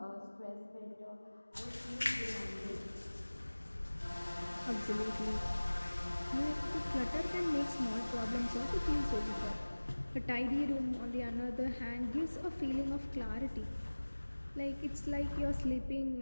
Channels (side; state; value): both; inverted; correlation -1.00